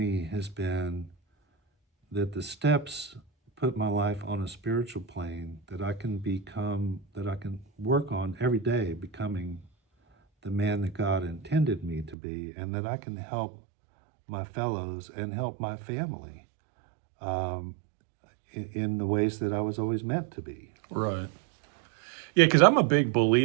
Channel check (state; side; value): drops out; left; at 12.2 s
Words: has been that the steps put my life on a spiritual plane that I can work on every day, becoming the man that God intended me to be, and that I can help my fellows and help my family in the ways that I was always meant to be. Right. Yeah, because I'm a big